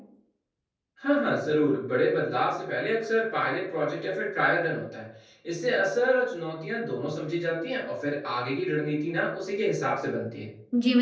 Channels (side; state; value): both; identical; correlation 1.00